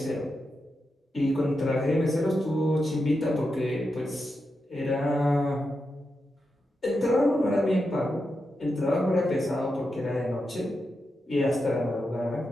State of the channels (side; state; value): both; normal; correlation 0.87